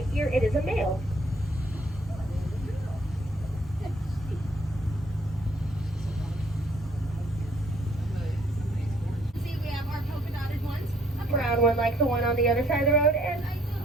ear, it is a male. See, we have our polka dotted ones. A brown one like the one on the other side of the road, and I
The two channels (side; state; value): both; normal; correlation 0.64